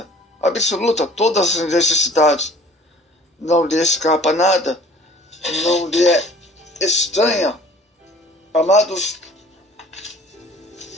absoluta, todas as necessidades. Não lhe escapa nada, não lhe é estranha. Amados,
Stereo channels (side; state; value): both; normal; correlation 0.49